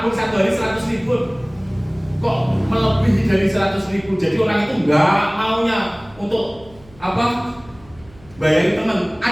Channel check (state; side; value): noise; right; hum, 25 dB below the sound